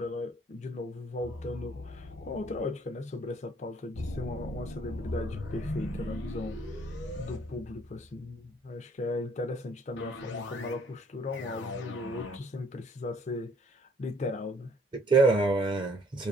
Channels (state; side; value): normal; both; correlation 0.61